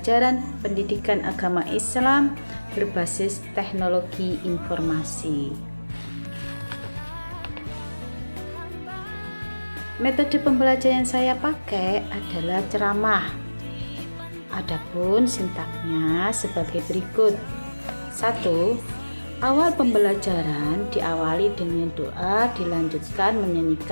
pendidikan agama Islam berbasis teknologi informasi. Metode pembelajaran yang saya pakai adalah ceramah. Adapun sintaknya sebagai berikut. 1. Awal pembelajaran diawali dengan doa, dilanjutkan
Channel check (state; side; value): inverted; both; correlation -1.00